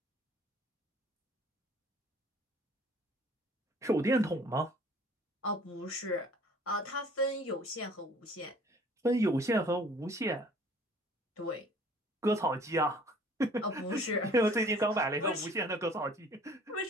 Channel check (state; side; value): normal; both; correlation 0.53